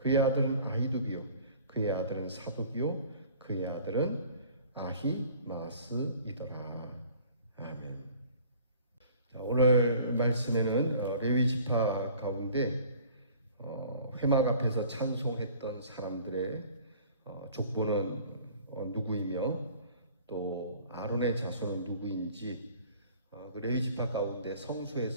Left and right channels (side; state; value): both; inverted; correlation -0.50